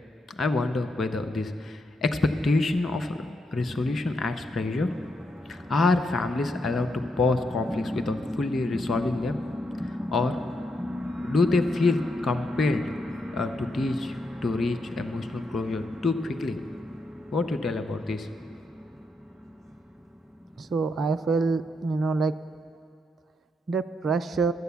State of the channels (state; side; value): normal; both; correlation 0.80